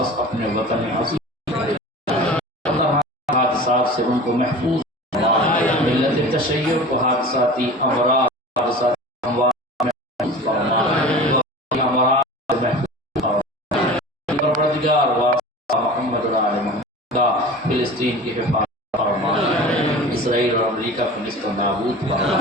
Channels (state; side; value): normal; both; correlation 0.37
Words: اپنے وطن عظیم حادثات سے ان کو محفوظ فرما ملت تشیع کو حادثاتی امراض حادثاتی پروردگار واسطہ محمد و آل محمد کا فلسطین کی حفاظت فرما اسرائیل اور امریکہ کو نست و نابود